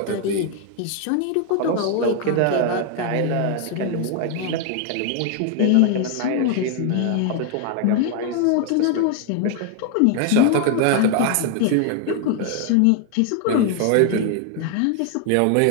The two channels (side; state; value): both; different; correlation 0.01